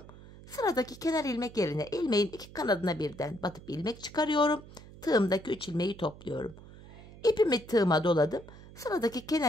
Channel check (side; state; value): right; noise; hum, 18 dB below the sound